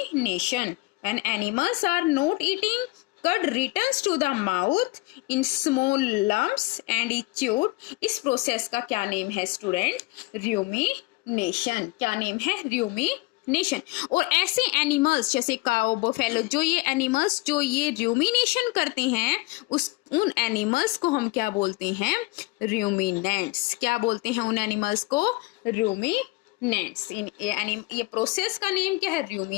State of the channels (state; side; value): quieter; right; 22.3 dB